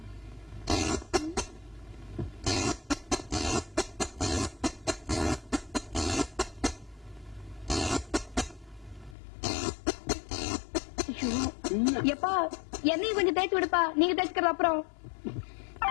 எப்பா என்னையும் கொஞ்சம் தேய்ச்சி விடுப்பா. நீங்க தேய்ச்சிக்கிற அப்புறம்.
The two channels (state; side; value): drops out; right; at 9.2 s